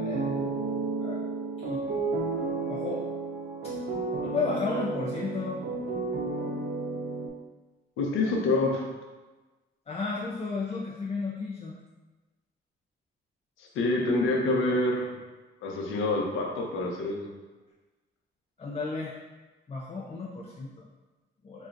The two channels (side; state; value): both; normal; correlation 0.37